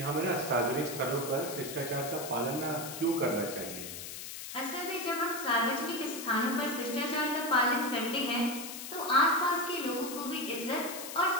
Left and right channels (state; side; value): noise; left; hiss, 9 dB below the sound